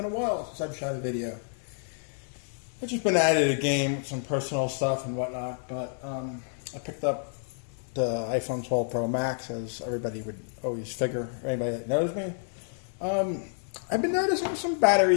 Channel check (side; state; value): right; silent; digital silence